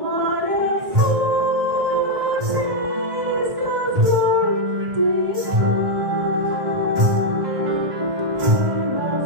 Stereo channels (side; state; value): left; late; 1.6 ms